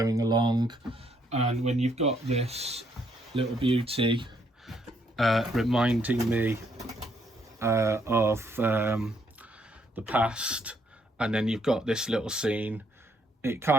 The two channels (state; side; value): normal; both; correlation 0.71